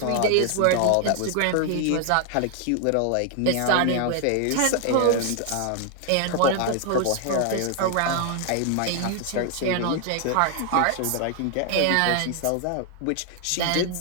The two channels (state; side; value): different; both; correlation 0.00